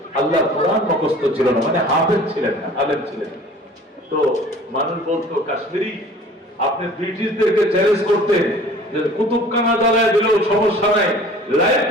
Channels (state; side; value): normal; both; correlation 0.47